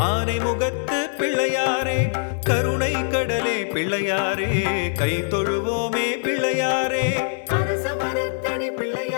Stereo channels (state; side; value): silent; right; digital silence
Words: ஆனை முகத்து பிள்ளையாரே கருணை கடலே பிள்ளையாரே கை தொழுவோமே பிள்ளையாரே. அரச மரத்தடி